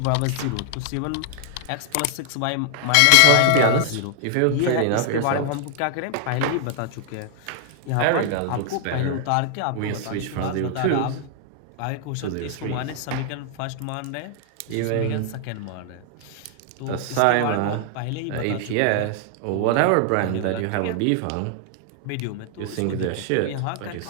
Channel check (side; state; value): both; different; correlation 0.00